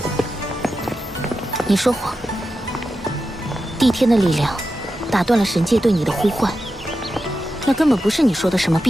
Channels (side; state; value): both; normal; correlation 0.90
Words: 你说谎，帝天的力量打断了神界对你的呼唤，那根本不是你说的什么